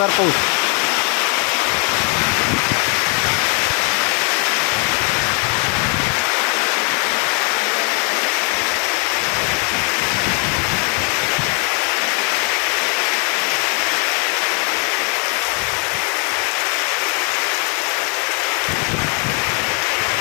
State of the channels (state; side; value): quieter; right; 38.7 dB